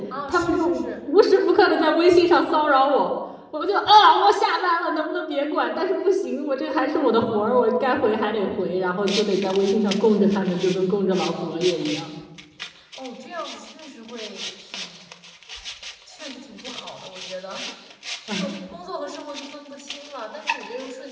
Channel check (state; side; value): identical; both; correlation 1.00